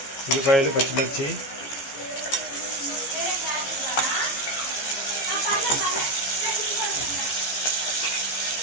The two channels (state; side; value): late; right; 15 ms